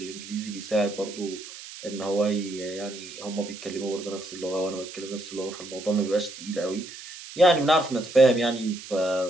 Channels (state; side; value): noise; right; hiss, 14 dB below the sound